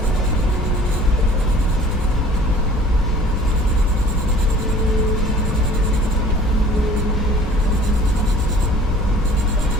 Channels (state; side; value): noise; left; hum, 10 dB below the sound